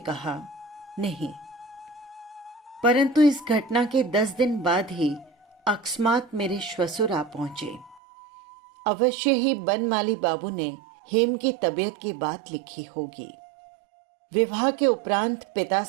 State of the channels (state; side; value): drops out; left; at 8.0 s